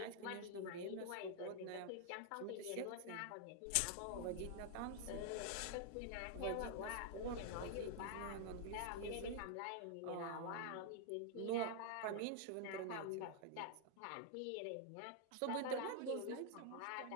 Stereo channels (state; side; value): different; both; correlation 0.00